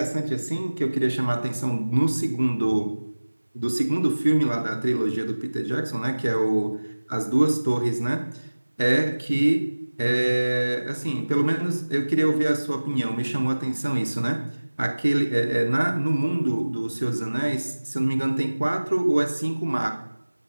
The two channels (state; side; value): inverted; both; correlation -1.00